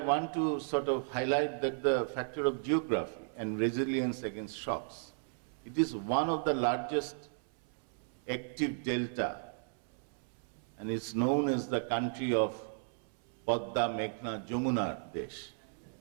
to sort of highlight that the factor of geography and resilience against shocks. It is one of the largest active delta, and it's known as the country of Patna, Meghna, Jamuna Desh.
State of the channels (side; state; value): left; silent; 55 dB below the other